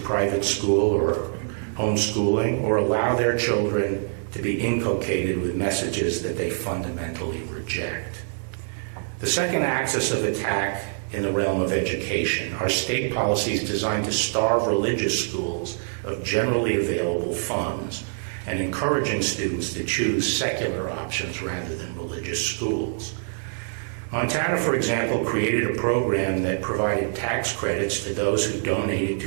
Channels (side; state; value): left; silent; digital silence